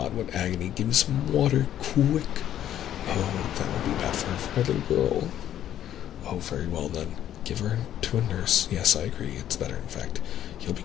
what agony. Give me some water, quick. Oh, that will be bad for her, for my little girl. Oh, very well then. Give her to a nurse. Yes, I agree. It's better, in fact. He'll be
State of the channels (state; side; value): quieter; right; 11.2 dB